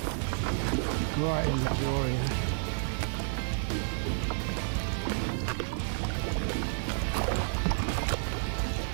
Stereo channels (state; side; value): silent; left; digital silence